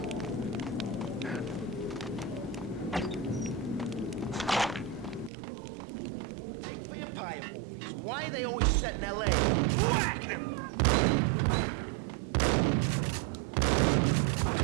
Why are they always set in L.A.? Whack him!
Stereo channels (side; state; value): left; drops out; at 5.3 s